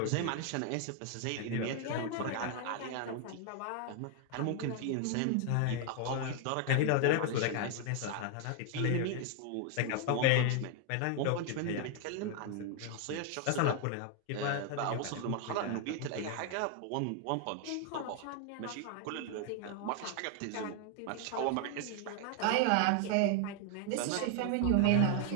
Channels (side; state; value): both; different; correlation 0.00